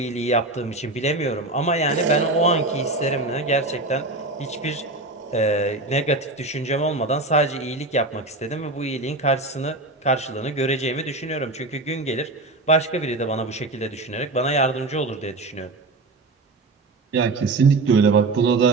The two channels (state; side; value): quieter; left; 3.1 dB